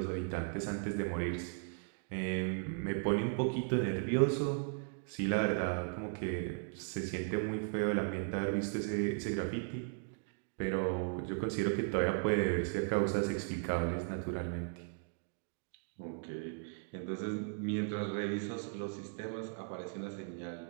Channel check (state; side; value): silent; left; 53 dB below the other